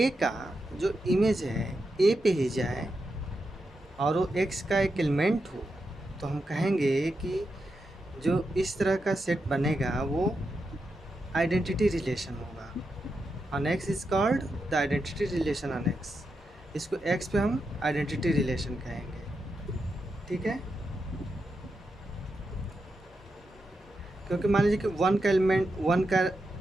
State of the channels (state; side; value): normal; both; correlation 0.86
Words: का जो इमेज है ए पे ही जाए और वो एक्स का एक एलिमेंट हो, तो हम कहेंगे कि जो इस तरह का सेट बनेगा वो आइडेंटिटी रिलेशन होगा। On X is called the identity relation on x. इसको एक्स पे हम आइडेंटिटी रिलेशन कहेंगे। ठीक है, क्योंकि मान लीजिए कि वन का एलिमेंट, वन का